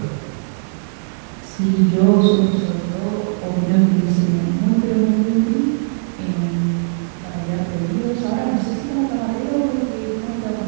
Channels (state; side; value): silent; left; digital silence